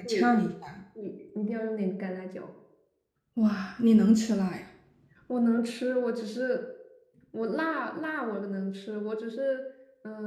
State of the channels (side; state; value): both; identical; correlation 1.00